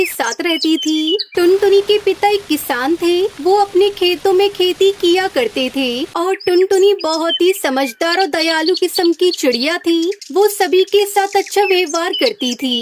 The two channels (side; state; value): both; identical; correlation 1.00